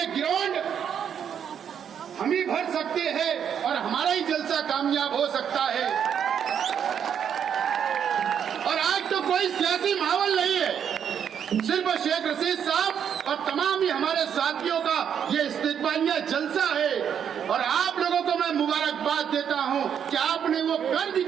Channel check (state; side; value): quieter; left; 8.3 dB